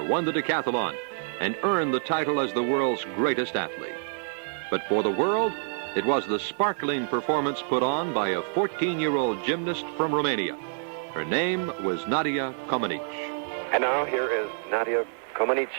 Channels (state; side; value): silent; left; digital silence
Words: won the decathlon and earned the title as the world's greatest athlete. But for the world, it was the sparkling performance put on by a 14-year-old gymnast from Romania. Her name was Nadia Comaneci. And now here is Nadia